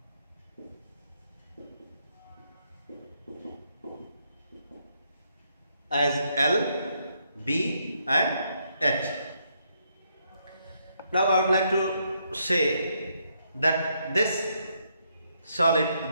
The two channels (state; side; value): inverted; both; correlation -0.75